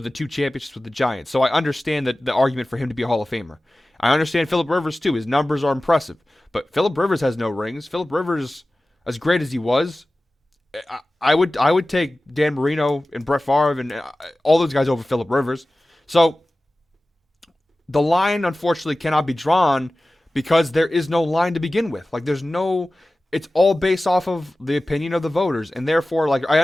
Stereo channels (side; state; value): both; normal; correlation 0.96